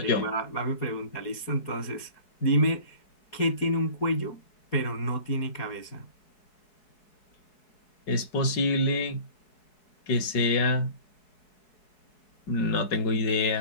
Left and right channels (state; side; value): late; right; 4.7 ms